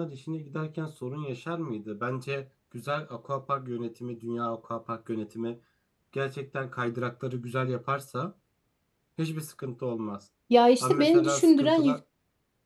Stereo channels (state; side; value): identical; both; correlation 1.00